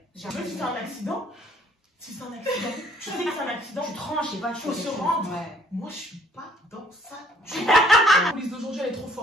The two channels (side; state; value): both; normal; correlation 0.60